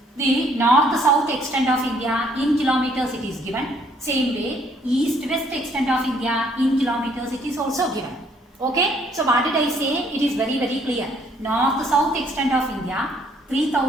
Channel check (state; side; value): normal; both; correlation 0.65